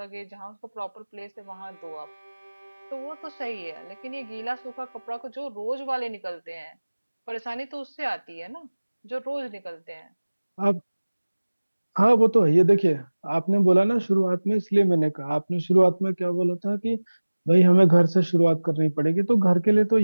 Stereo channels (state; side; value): inverted; both; correlation -1.00